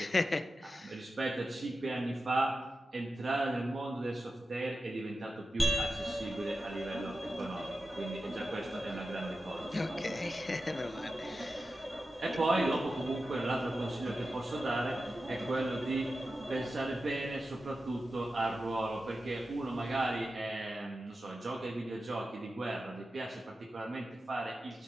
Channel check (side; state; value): both; normal; correlation 0.91